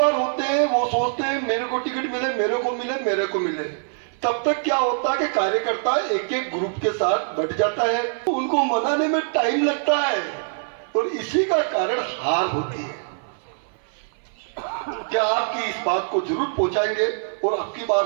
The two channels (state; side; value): silent; left; 57 dB below the other